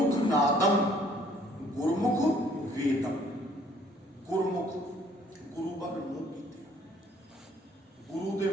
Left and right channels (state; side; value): normal; both; correlation 0.61